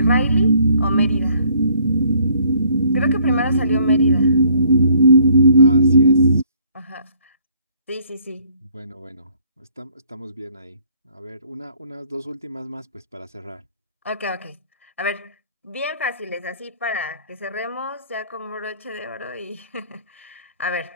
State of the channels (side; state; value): both; inverted; correlation -0.62